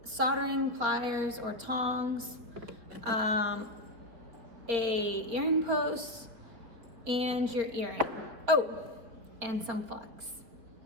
soldering pliers or tongs, a earring post, and your earring. Oh, and some flux.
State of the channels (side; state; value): left; late; 4.4 ms